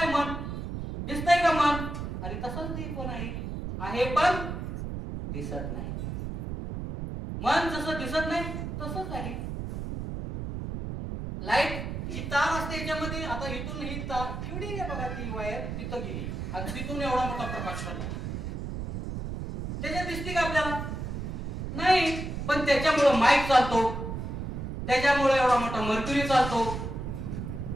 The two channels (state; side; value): noise; right; rumble, 5 dB below the sound